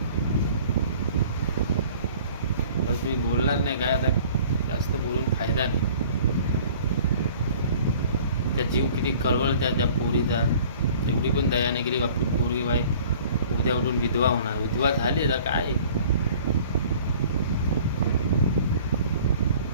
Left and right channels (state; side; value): inverted; both; correlation -0.49